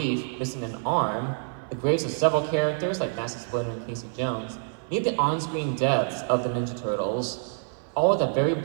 missing an arm, the graves of several characters like Master Splinter and Casey Jones, and even the on-screen deaths of the Ninja Turtles. All with a very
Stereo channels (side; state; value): left; silent; 55 dB below the other